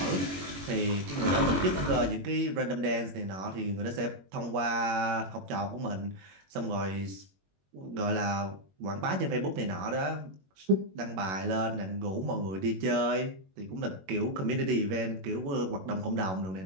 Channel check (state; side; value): late; left; 21 ms